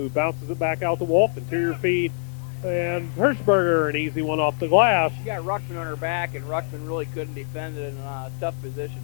Bounces it back out to Wolf. Interior feed. And Hirschberger, an easy one off the glass. She got Ruckman on her back, and Ruckman really couldn't defend it in a tough position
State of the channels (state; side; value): silent; right; digital silence